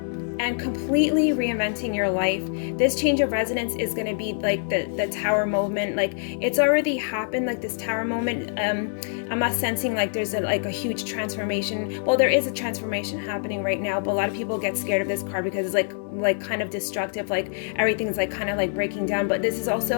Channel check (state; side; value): silent; right; digital silence